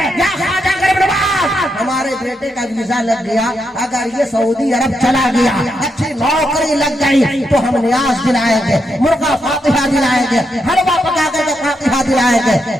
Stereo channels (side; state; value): both; normal; correlation 0.82